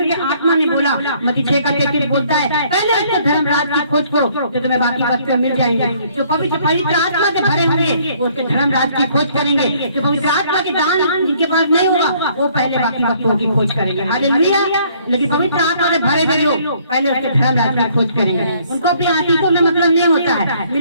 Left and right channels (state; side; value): inverted; both; correlation -0.62